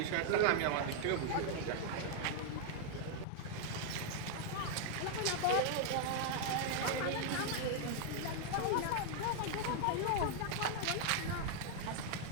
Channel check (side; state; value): both; different; correlation 0.00